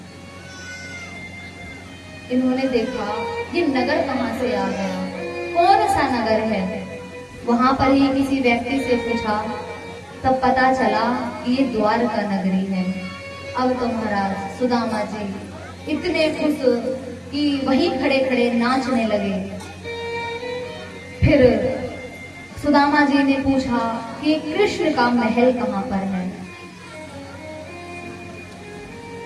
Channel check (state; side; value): identical; both; correlation 1.00